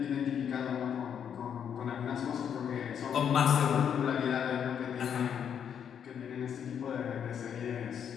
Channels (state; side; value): quieter; right; 8.3 dB